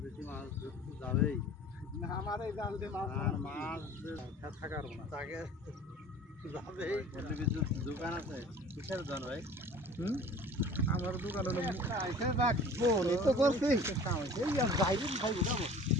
মাছ ধরতে যাবেই না আমার এই জাল দিয়ে মাছ আর মাছ থাকার না তাকে যাবেই বলতে কিছু দোকান আছে কিসের দোকান ভাই? আমার দোকান হলো আইসে রাখবো এই তো করছি কাম হয়েছে এই বাইরে খাই যাবো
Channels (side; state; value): both; normal; correlation 0.45